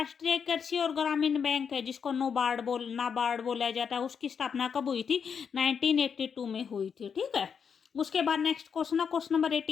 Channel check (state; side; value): quieter; right; 6.8 dB